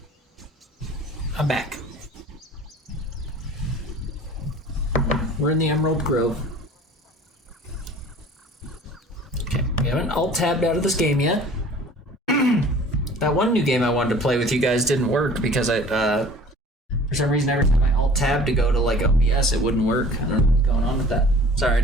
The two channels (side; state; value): both; normal; correlation 0.47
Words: I'm back. We're in the Emerald Grove. Okay, we haven't alt-tabbed out of this game yet. That one new game I wanted to play with you guys didn't work because for some reason every time I alt-tab to go to like OBS, it wouldn't work. I don't know what's going on with that. Sorry, I